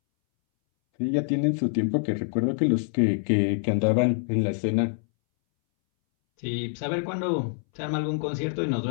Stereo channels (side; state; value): right; silent; 61 dB below the other